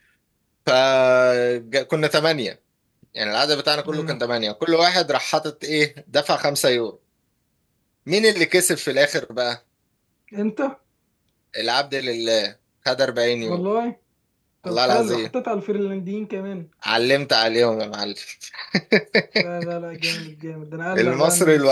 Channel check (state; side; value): identical; both; correlation 1.00